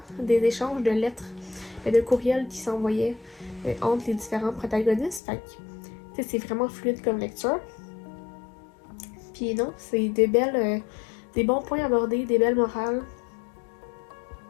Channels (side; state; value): right; drops out; at 5.2 s